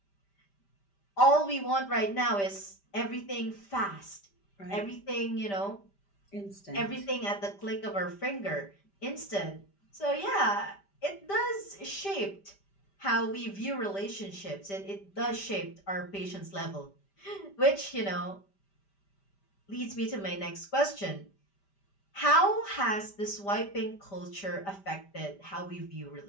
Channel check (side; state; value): right; late; 5.1 ms